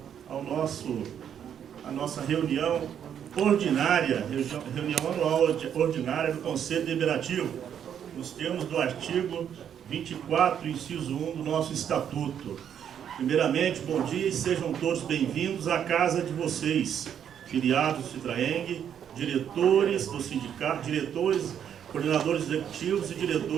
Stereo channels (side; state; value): left; quieter; 8.9 dB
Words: a nossa reunião ordinária, reunião anual ordinária do Conselho Deliberativo, nos termos do artigo 24, inciso 1 do nosso Estatuto. Primeiramente, bom dia e sejam todos bem-vindos à casa de vocês, filiados do Citraeng, diretores do sindicato, coordenadores executivos e